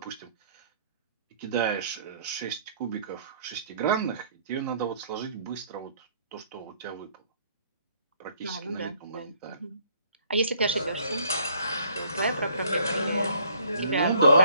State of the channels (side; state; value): both; inverted; correlation -0.62